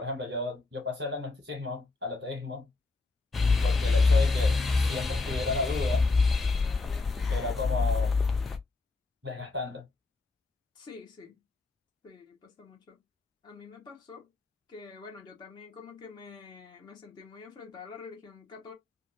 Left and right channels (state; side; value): quieter; right; 3.5 dB